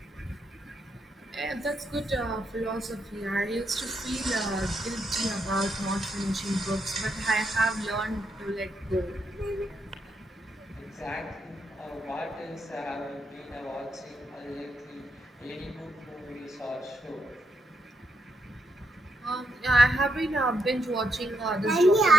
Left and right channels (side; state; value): both; normal; correlation 0.80